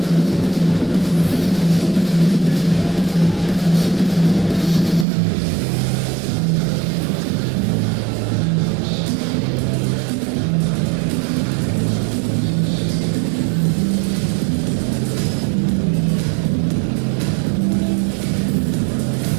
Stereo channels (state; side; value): drops out; left; at 5.1 s